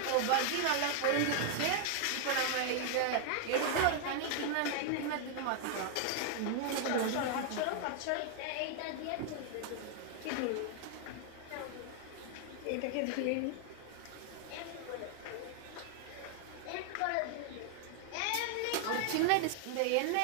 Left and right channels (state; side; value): different; both; correlation 0.00